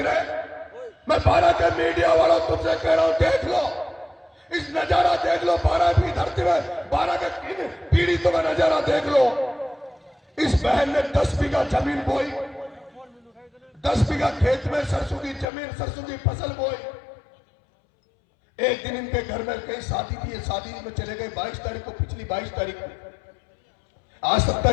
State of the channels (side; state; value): right; drops out; at 15.5 s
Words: रहे हैं। मैं 12 के मीडिया वालों तुमसे कह रहा हूं, देख लो इस नजारा, देख लो 12 की धरती में, 12 के पीड़ितों का नजारा देख लो। इस बहन ने 10 बीघा जमीन बोई, 10 बीघा खेत में सरसों की जमीन, सरसों की फसल बोई। एक दिन इनके घर में कहीं शादी थी, शादी में चले गए 22 तारीख को, पिछली 22 तारीख को। आज